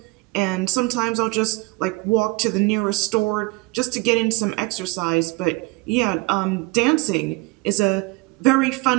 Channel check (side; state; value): left; quieter; 24.5 dB